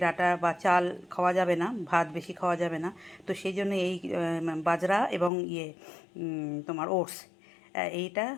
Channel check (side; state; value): right; drops out; at 5.3 s